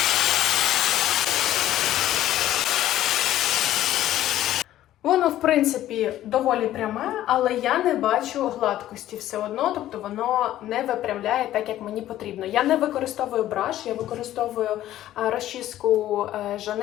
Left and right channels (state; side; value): quieter; right; 13.3 dB